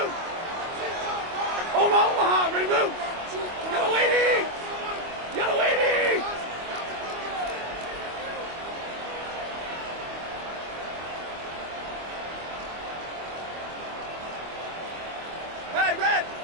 Omaha, ready to move. Yellow lady. Yellow lady. Hey, red.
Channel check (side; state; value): left; late; 25 ms